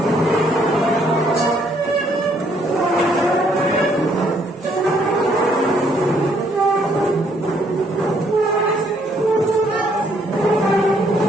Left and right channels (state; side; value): normal; both; correlation 0.68